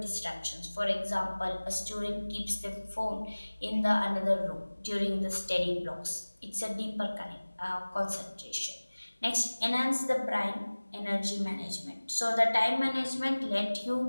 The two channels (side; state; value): both; inverted; correlation -1.00